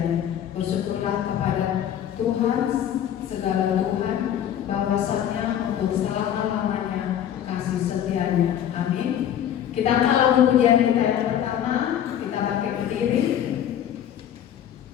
Bersyukurlah kepada Tuhan segala Tuhan, bahwasanya untuk selama-lamanya kasih setianya. Amin. Kita kalau pujian kita yang pertama, kita pakai berdiri.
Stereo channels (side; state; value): right; quieter; 10.2 dB